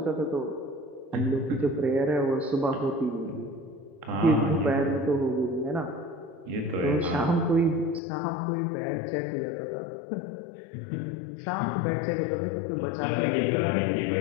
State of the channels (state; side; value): drops out; right; at 8.0 s